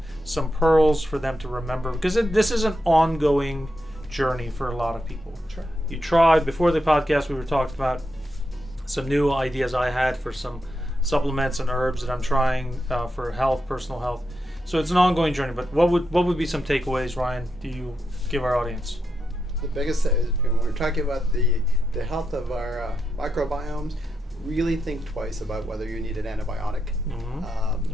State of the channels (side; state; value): both; normal; correlation 0.85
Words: some pearls for them to remember, because this is an ongoing journey for a lot of people. Sure. You tried before the podcast, we were talking about some new ideas I had for some supplements and herbs that I'm trying for health, personal health. So it's an ongoing journey. But what would be some takeaways, Ryan, do you give our audience? The biggest thing is, when we're talking about the health of our microbiomes, really think twice about whether you need an antibiotic.